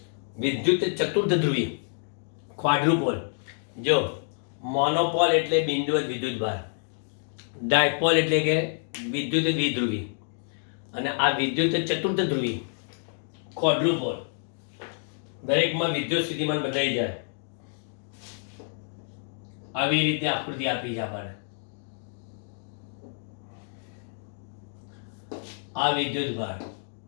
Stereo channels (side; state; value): right; silent; digital silence